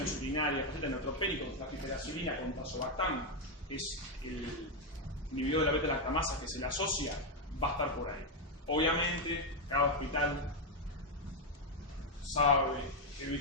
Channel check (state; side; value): normal; both; correlation 0.03